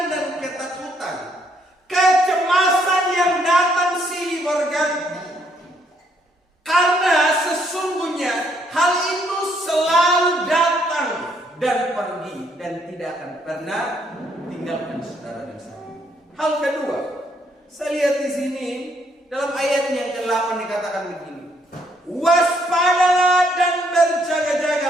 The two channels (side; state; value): both; normal; correlation 0.70